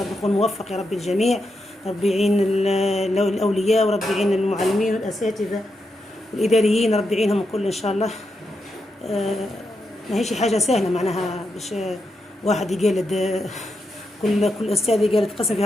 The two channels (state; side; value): normal; both; correlation 0.84